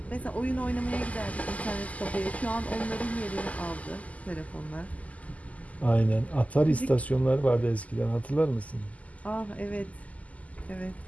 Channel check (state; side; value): late; right; 0.073 ms